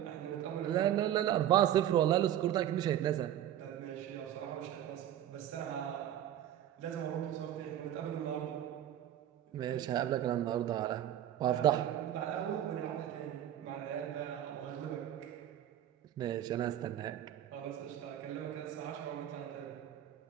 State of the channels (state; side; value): quieter; left; 11.4 dB